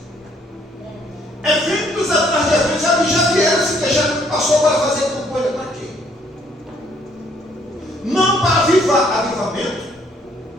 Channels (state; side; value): normal; both; correlation 0.66